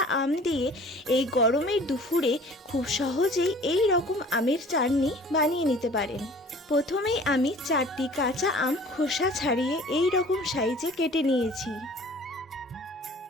আম দিয়ে এই গরমের দুপুরে খুব সহজেই এই রকম আমের চাটনি বানিয়ে নিতে পারেন। প্রথমেই আমি 4টি কাঁচা আম খোসা ছাড়িয়ে এই রকম সাইজে কেটে নিয়েছি।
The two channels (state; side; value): normal; both; correlation 0.48